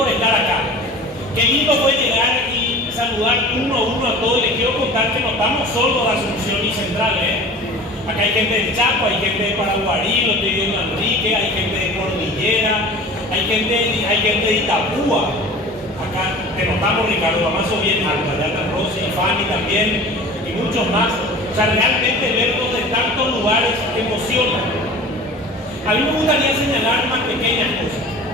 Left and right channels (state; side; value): normal; both; correlation 0.40